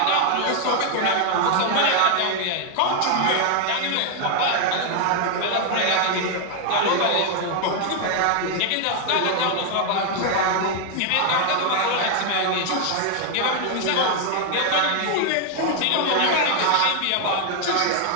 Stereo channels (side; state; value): both; different; correlation 0.00